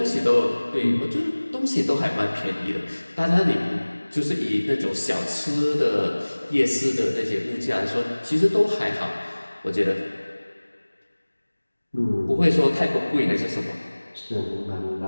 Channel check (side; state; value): both; inverted; correlation -1.00